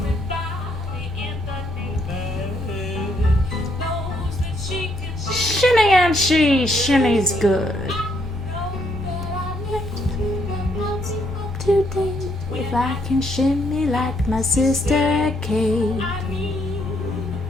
in the neighborhood knows that she can shimmy and she shimmy's good. Today, if I can shimmy like my sister Kate,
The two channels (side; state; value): both; normal; correlation 0.73